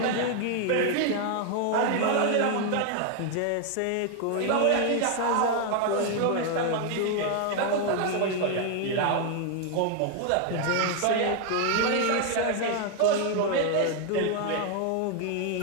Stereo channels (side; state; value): both; different; correlation 0.01